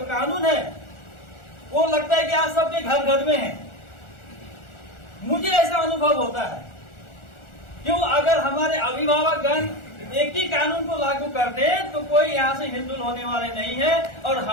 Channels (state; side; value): late; right; 1.4 ms